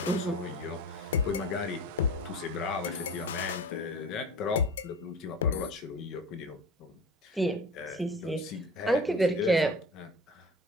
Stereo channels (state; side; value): normal; both; correlation 0.35